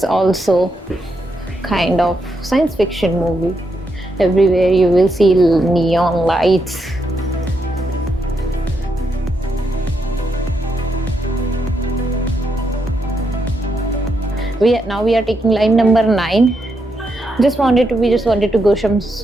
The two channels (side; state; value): both; normal; correlation 0.81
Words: also kind of science fiction movie. Everywhere you will see neon lights. Now we are taking line number 9. We just wanted to go some